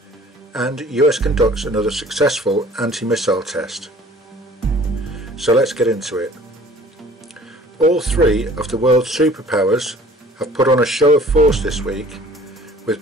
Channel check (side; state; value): both; normal; correlation 0.50